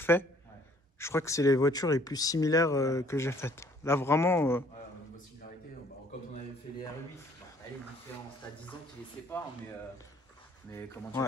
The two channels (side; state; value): both; normal; correlation 0.59